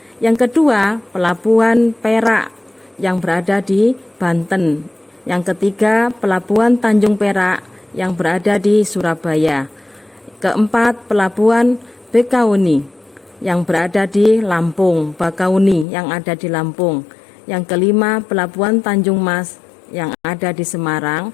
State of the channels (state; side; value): drops out; right; at 15.9 s